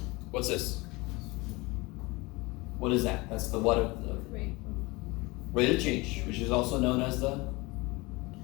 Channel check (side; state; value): right; quieter; 23.9 dB